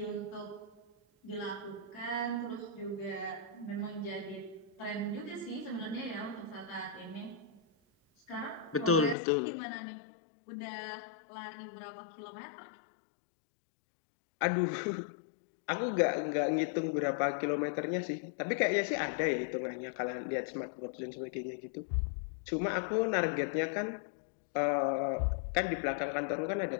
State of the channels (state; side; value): drops out; right; at 9.2 s